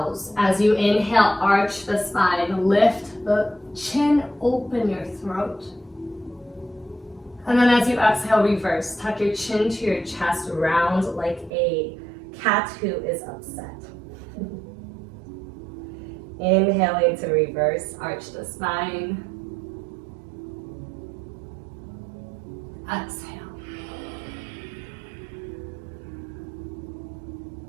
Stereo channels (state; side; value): drops out; left; at 11.5 s